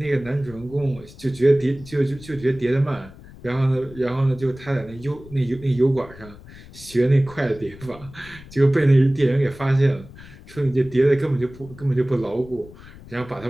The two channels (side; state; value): left; noise; rumble, 19 dB below the sound